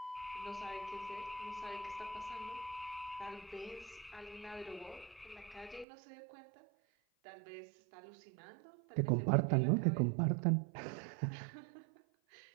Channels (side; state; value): left; drops out; at 5.9 s